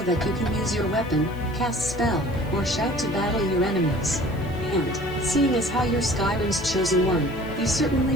that you can use your weapon, cast spell, or shout to battle your enemies. And, seeing as how you're Skyrim's chosen one, you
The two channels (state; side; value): noise; left; hiss, 26 dB below the sound